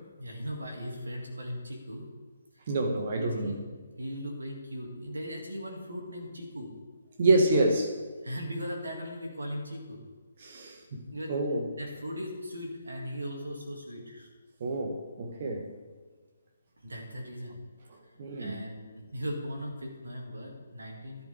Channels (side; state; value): both; inverted; correlation -0.74